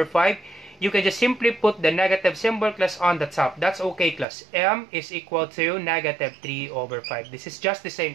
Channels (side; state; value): left; drops out; at 4.2 s